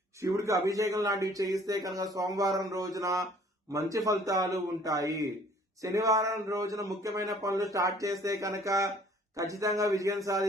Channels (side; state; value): both; normal; correlation 0.55